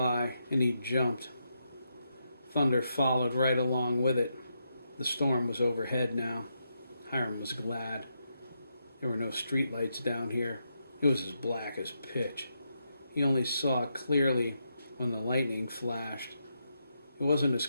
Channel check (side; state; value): both; inverted; correlation -0.82